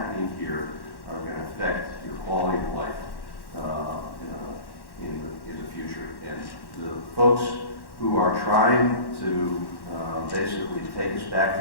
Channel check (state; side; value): late; right; 1.1 ms